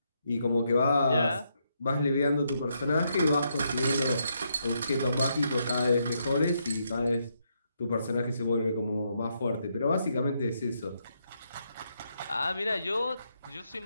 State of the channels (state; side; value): inverted; both; correlation -0.78